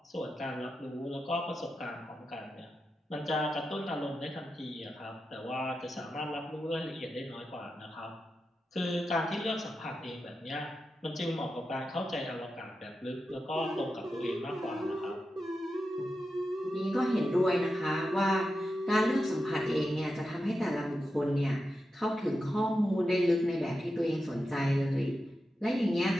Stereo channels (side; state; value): both; normal; correlation 0.90